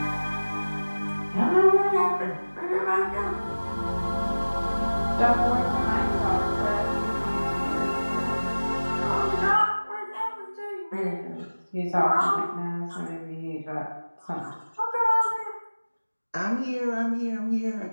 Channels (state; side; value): inverted; both; correlation -1.00